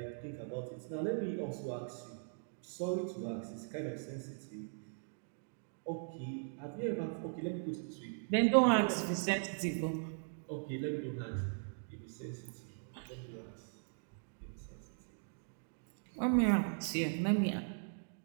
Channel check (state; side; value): silent; left; digital silence